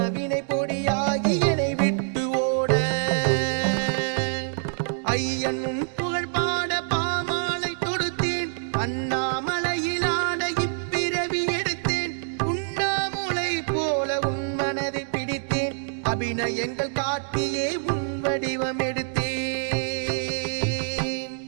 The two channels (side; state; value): left; silent; digital silence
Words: வினை பொடியாகி என்னை விட்டு ஓட ஐயன் உன் புகழ் பாட பாமாலை தொடுத்தேன் அண்ணாமலையிலாட இப்பிறவி எடுத்தேன் உண்ணாமுலை போல உன் மனதை பிடித்தேன் அபிநயங்கள் காட்டியே உன் வடிவம் எடுத்தேன்